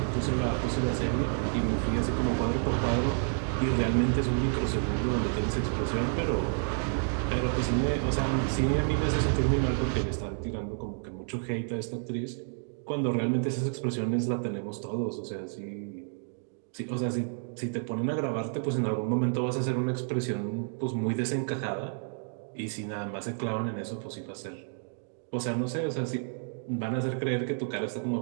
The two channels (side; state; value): left; silent; 56 dB below the other